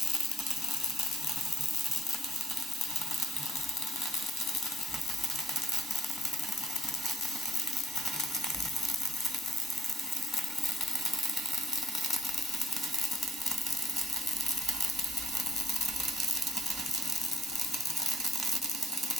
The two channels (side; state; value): both; normal; correlation 0.66